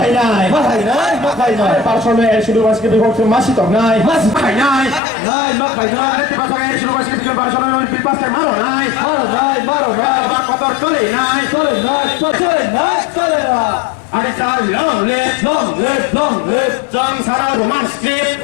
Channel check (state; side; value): drops out; right; at 5.0 s